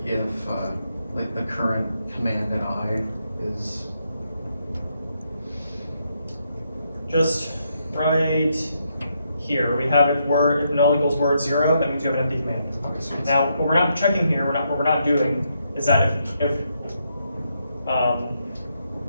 if, like the current command in I is, Just right here, we have if null equals word 0, that means you have an empty command. okay, so it's, Now, what we're not checking here, what we're not doing is that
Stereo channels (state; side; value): inverted; both; correlation -0.79